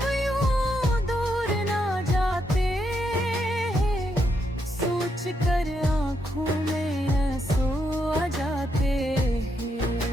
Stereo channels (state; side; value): normal; both; correlation 0.79